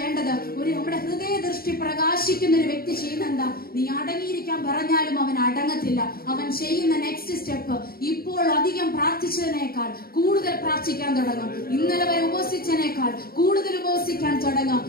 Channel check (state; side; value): late; right; 0.44 ms